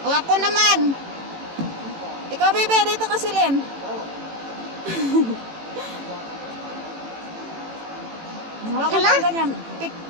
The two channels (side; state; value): left; late; 18 ms